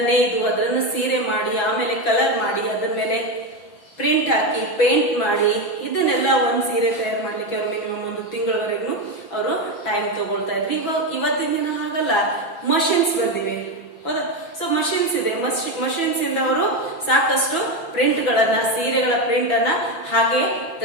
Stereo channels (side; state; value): right; late; 6.0 ms